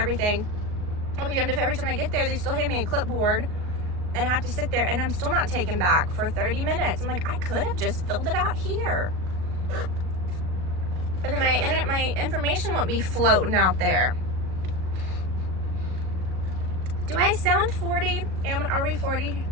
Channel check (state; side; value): late; left; 38 ms